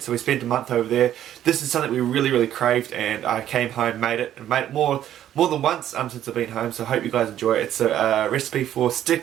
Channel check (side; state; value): left; quieter; 11.4 dB